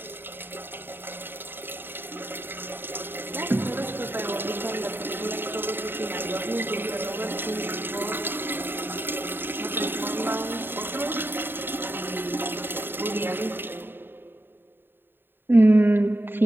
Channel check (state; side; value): late; left; 0.099 ms